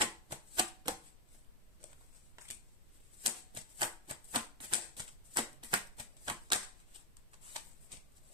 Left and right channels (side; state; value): both; normal; correlation 0.01